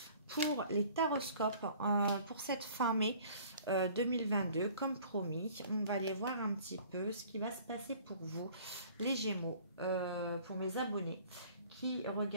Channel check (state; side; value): inverted; both; correlation -0.51